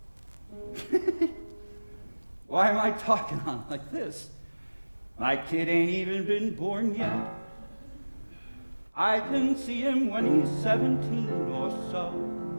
Why am I talking on like this? My kid ain't even been born yet. I can see him when he's 17 or so,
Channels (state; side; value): inverted; both; correlation -1.00